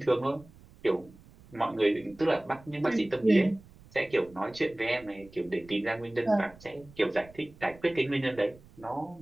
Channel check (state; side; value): noise; right; rumble, 23 dB below the sound